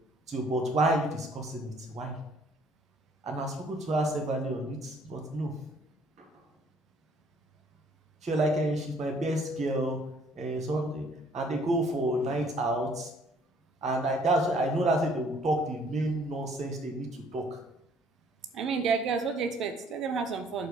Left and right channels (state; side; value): normal; both; correlation 0.61